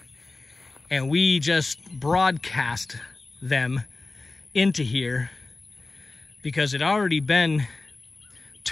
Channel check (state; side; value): quieter; right; 3.3 dB